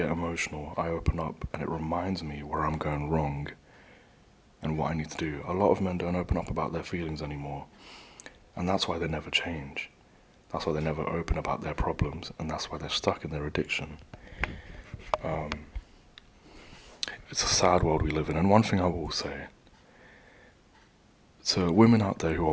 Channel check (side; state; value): both; identical; correlation 1.00